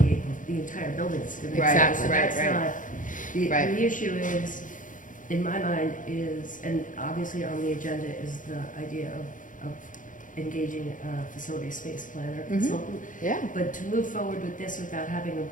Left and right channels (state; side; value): late; right; 0.38 ms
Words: the entire building's going to. Right, Exactly. So right, that's right. not, the Right. issue is, in my mind, is, and obviously on the agenda is the idea of engaging a facility space planner Mhm. consultant. Yeah. But to move forward with this without having a